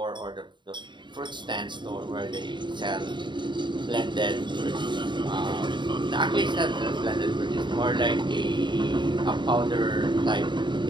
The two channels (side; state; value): left; late; 0.23 ms